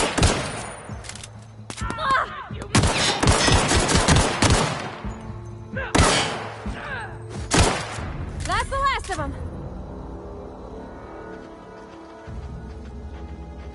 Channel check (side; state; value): both; identical; correlation 1.00